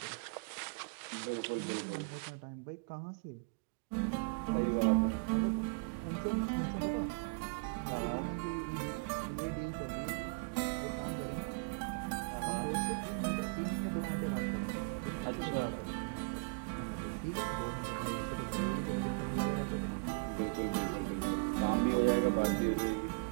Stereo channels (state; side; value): quieter; left; 32.2 dB